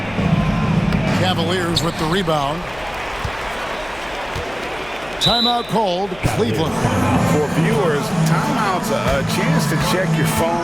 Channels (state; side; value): noise; left; hum, 21 dB below the sound